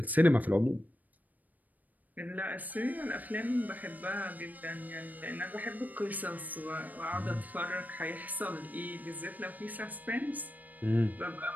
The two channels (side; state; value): left; late; 0.081 ms